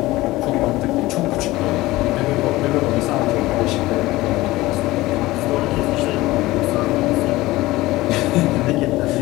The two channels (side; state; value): right; quieter; 18.6 dB